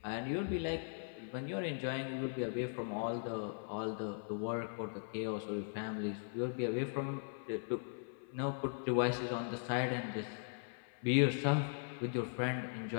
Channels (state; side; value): silent; right; 52 dB below the other